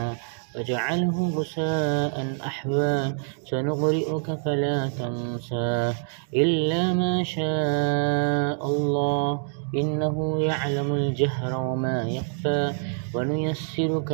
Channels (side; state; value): left; silent; digital silence